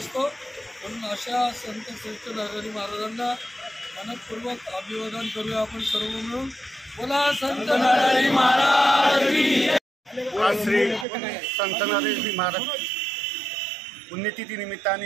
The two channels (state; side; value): drops out; left; at 11.1 s